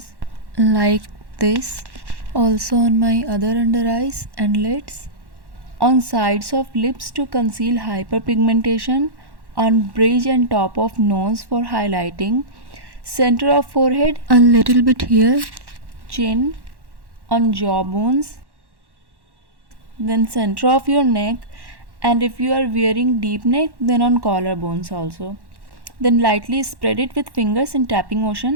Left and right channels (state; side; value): late; left; 1.1 ms